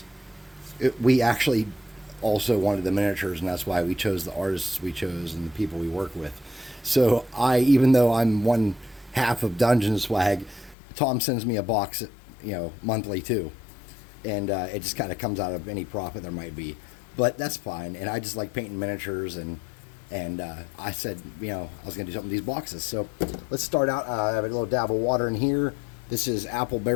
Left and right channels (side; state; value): right; drops out; at 10.8 s